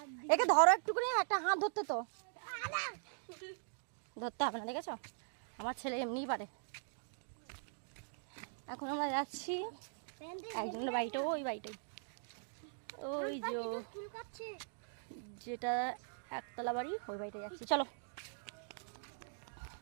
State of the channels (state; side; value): silent; left; digital silence